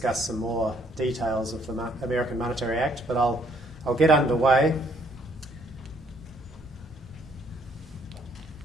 some more details of the American Monetary Act, but I'll get underway.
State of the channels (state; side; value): normal; both; correlation 0.65